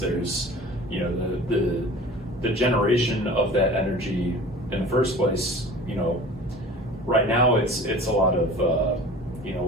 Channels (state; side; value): normal; both; correlation 0.41